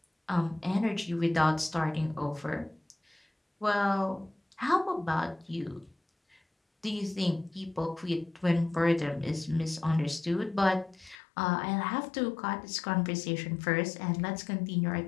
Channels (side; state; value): right; drops out; at 11.2 s